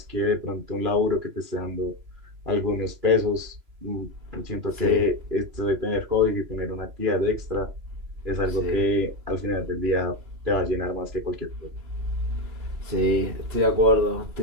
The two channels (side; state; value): left; late; 3.0 ms